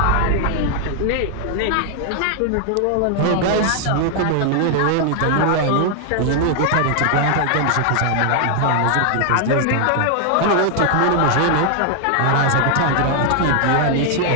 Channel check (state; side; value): different; both; correlation 0.00